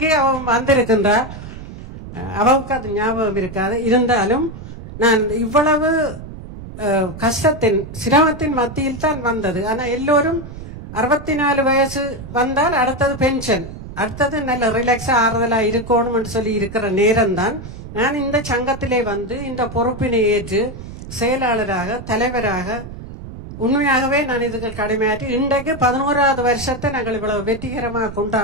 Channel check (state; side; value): noise; right; rumble, 12 dB below the sound